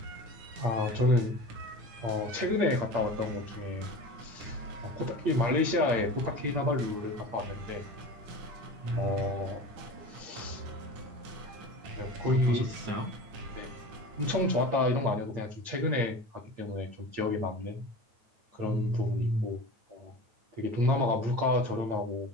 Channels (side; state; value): left; late; 8.7 ms